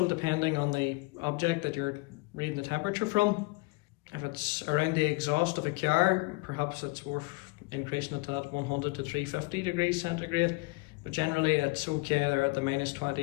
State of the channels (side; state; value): right; quieter; 25.2 dB